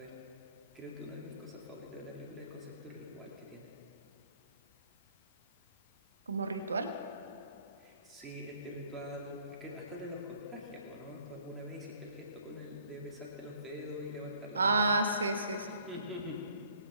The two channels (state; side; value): inverted; both; correlation -0.58